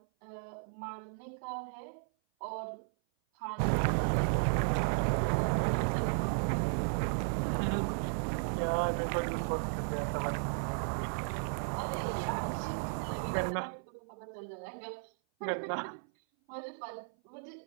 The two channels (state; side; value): silent; left; 55 dB below the other